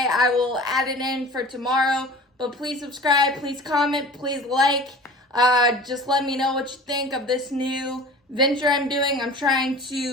I will add it in for tomorrow. But please subscribe, please comment, please like. Just let me know what you think of this new venture I'm doing. I'm trying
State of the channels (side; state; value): both; normal; correlation 0.40